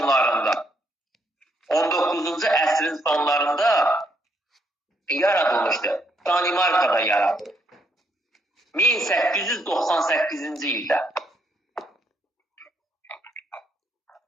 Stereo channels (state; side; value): normal; both; correlation 0.73